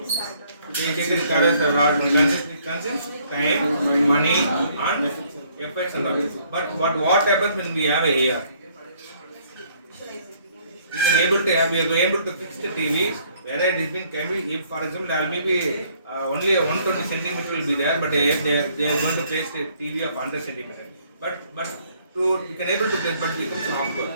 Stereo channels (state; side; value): inverted; both; correlation -0.64